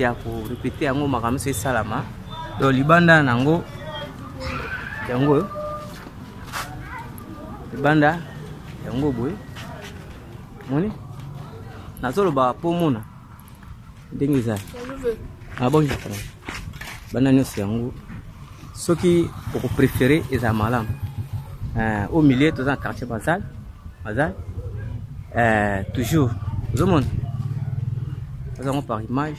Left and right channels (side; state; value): both; identical; correlation 1.00